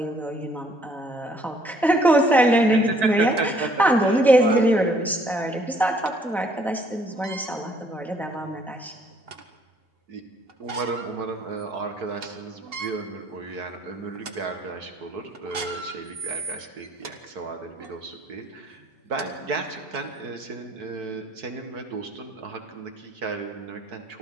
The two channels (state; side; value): normal; both; correlation 0.64